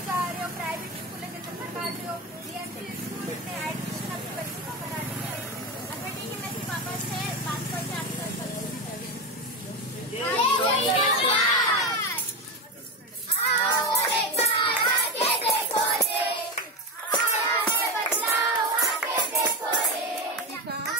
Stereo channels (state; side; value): normal; both; correlation 0.16